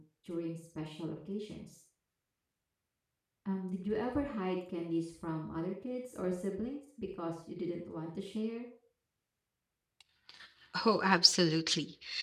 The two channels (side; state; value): both; identical; correlation 1.00